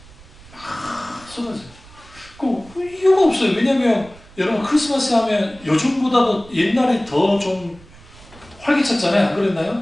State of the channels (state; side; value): noise; right; rumble, 22 dB below the sound